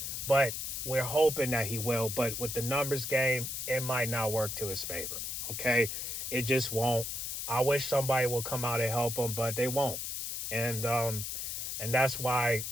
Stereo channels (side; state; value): left; noise; hiss, 4 dB below the sound